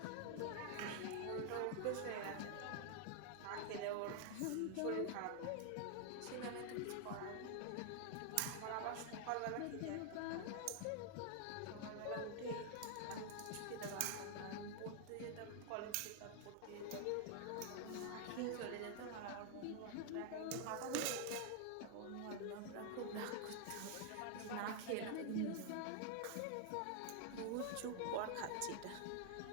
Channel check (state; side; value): different; both; correlation 0.00